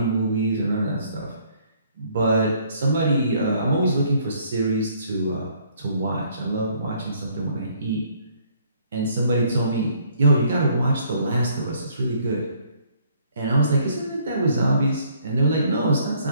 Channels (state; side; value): inverted; both; correlation -0.63